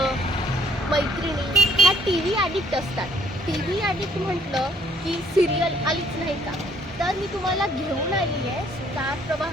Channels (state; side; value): normal; both; correlation 0.63